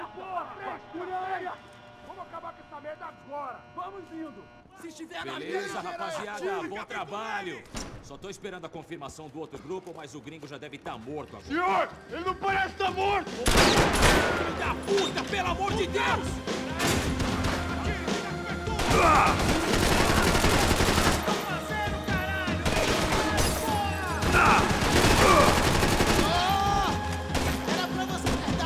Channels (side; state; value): both; identical; correlation 1.00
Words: Beleza, rapaziada, bom trabalho. Só tô esperando a confirmação do outro grupo, mas o gringo já deve estar morto agora. Senhor, ele não parece estar morto! Filho da puta, pelo amor de Deus! Era pra você ter